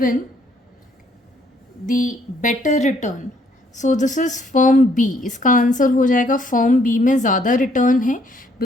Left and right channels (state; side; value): normal; both; correlation 0.67